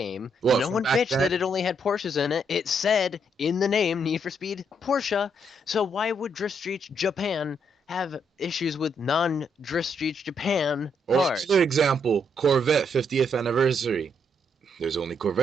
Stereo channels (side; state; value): both; normal; correlation 0.75